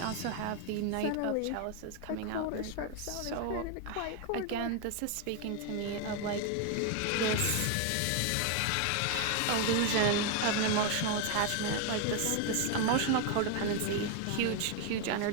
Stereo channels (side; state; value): both; different; correlation 0.01